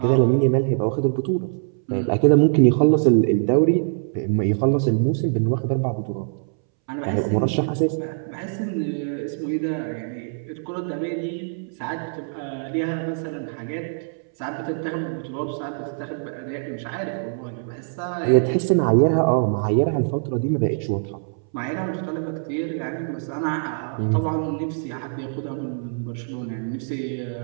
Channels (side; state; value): left; silent; 63 dB below the other